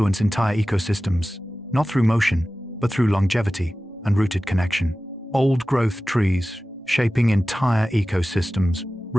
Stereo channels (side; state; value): both; normal; correlation 0.95